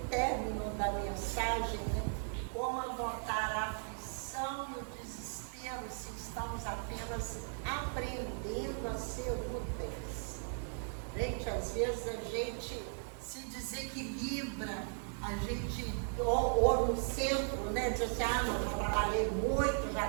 término da mensagem, como adotar a aflição e o desespero se estamos apenas aprendendo a ser úteis. Gente, às vezes a gente se desequilibra, a gente, ou no centro, diz assim, não, já trabalhei muito, já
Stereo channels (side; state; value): left; silent; 53 dB below the other